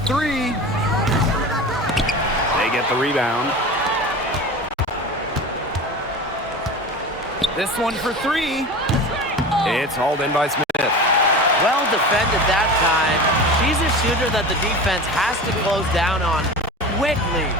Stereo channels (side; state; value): both; normal; correlation 0.32